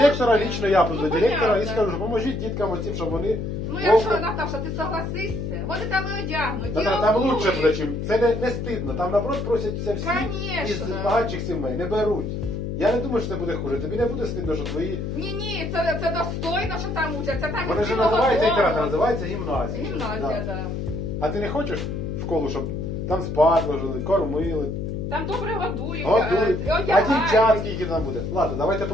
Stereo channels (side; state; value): left; noise; hum, 3 dB below the sound